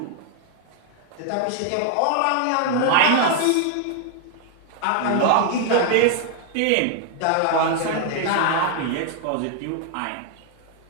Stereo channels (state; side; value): different; both; correlation 0.00